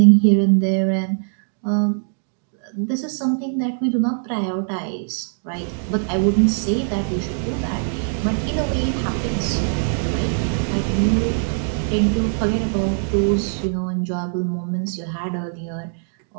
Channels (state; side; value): silent; left; 64 dB below the other